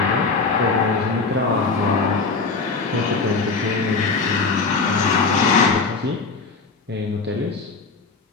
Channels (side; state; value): right; quieter; 4.3 dB